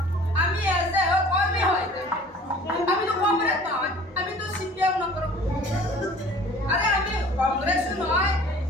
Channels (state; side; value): normal; both; correlation 0.48